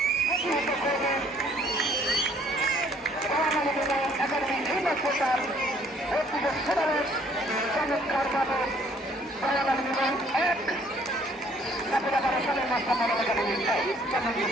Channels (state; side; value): normal; both; correlation 0.61